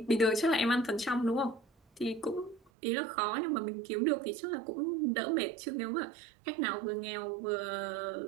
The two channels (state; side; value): drops out; left; at 2.7 s